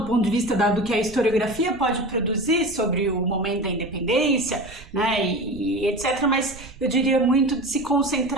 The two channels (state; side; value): noise; right; rumble, 19 dB below the sound